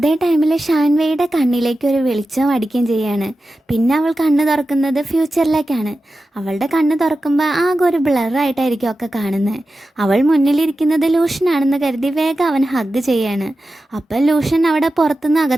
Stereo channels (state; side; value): normal; both; correlation 0.93